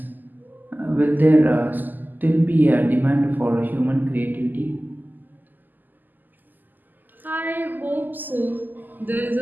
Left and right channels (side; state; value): left; late; 0.087 ms